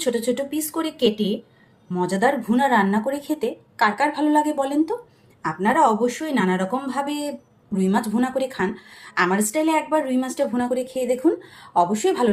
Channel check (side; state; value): both; identical; correlation 1.00